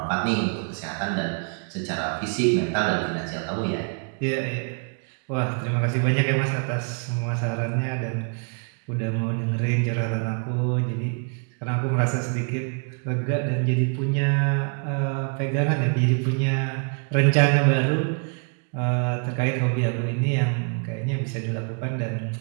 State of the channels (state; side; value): quieter; left; 40.0 dB